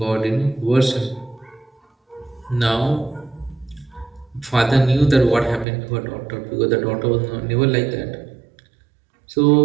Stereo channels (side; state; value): left; drops out; at 5.7 s